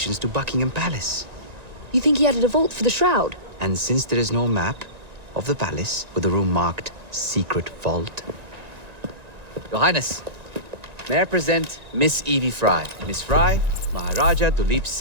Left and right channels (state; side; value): late; left; 1.9 ms